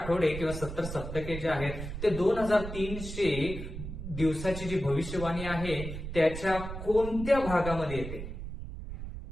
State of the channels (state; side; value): noise; right; rumble, 8 dB below the sound